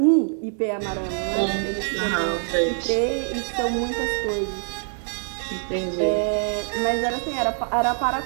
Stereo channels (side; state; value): left; silent; 62 dB below the other